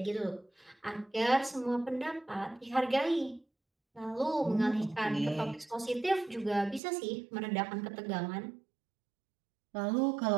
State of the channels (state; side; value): drops out; left; at 6.8 s